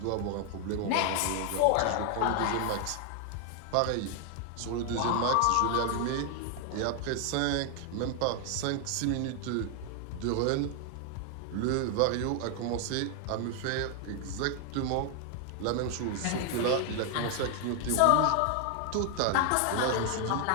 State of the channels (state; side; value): different; both; correlation 0.00